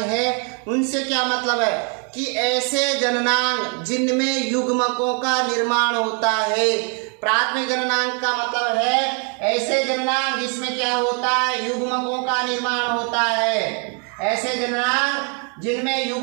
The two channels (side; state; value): left; quieter; 38.0 dB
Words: है, उनसे क्या मतलब है कि ऐसे जननांग जिनमें युग्मकों का निर्माण होता है। प्राथमिक जननांग का मतलब है ऐसे जननांग जिसमें क्या होता है, युग्मकों का निर्माण होता है। ऐसे जननांग जिनमें